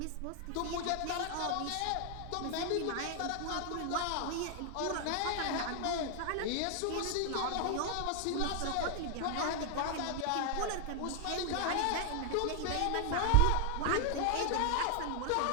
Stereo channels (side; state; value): both; different; correlation 0.00